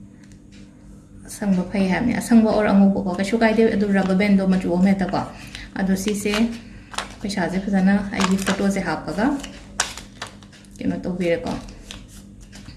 asang ba phai ha ni asang ba or angu ko ka shugai de adu rubber band do machu me ta ko adu si se pisha je phajana ai gi photo se hapaga keno to bire ko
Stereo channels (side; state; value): both; identical; correlation 1.00